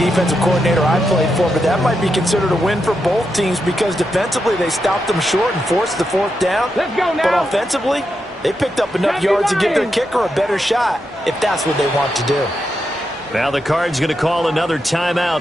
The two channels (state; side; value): normal; both; correlation 0.85